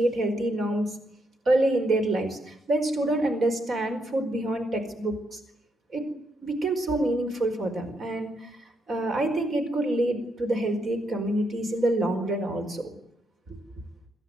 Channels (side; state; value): both; normal; correlation 0.78